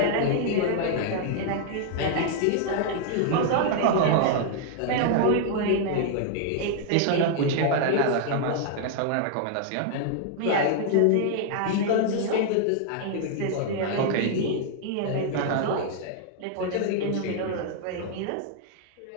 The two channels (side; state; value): both; different; correlation 0.00